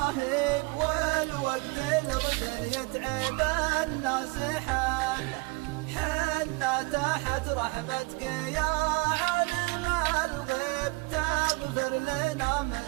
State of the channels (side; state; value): left; quieter; 25.7 dB